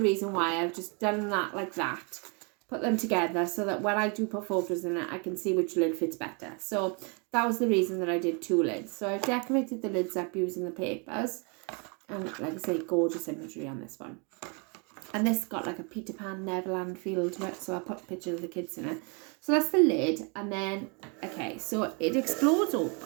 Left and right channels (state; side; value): quieter; left; 34.2 dB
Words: reason why I've just done that like that. Put them together so that when I do put photos in it, I can see which lid fits better. So that was the reason that I did 2 lids. So I've decorated the lids up using the papers. And like I say, gorgeous imagery on this one. And this got like a Peter Pan Neverland feel to it. So I put pictures of the kids in it. So that's the lid. And then, okay, so it explodes